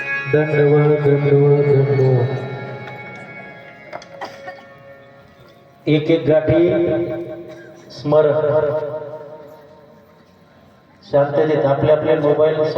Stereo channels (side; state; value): both; identical; correlation 1.00